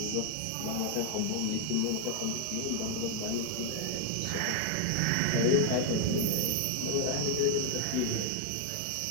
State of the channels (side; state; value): both; different; correlation 0.00